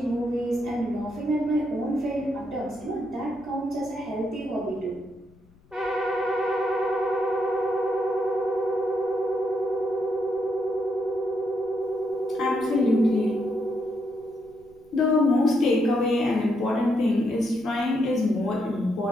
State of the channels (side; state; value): left; noise; rumble, 29 dB below the sound